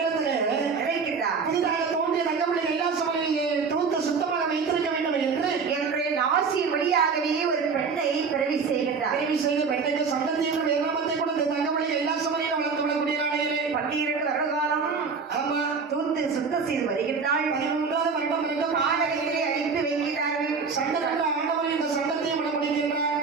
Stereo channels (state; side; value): quieter; left; 5.2 dB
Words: நினைக்கின்றார் புதிதாக தோன்றிய தங்கமணி கைலாச மலையை தூத்து சுத்தமாக வைத்திருக்க வேண்டும் என்று என்று நாசியின் வழியாகவே ஒரு பெண்ணை பிறவி செய்கின்றார். தேவி செய்த பெண்ணுக்கு சந்ததி என்ற வேதாமத்தை கொடுத்து தங்கமணி கைலாச மலையில் வளர்ந்து விடக்கூடிய நாளையிலே 12 வருட காலம் ஆமா தூத்து சுத்தம் செய்து வருகின்றாள். 13வது வருடம் வரைக்கும் காலகத்தை அனுப்பி வைக்கிறார்கள். சண்டை ஆண்டவர் இந்த சண்டத்தையும் விட முடிகின்றார்.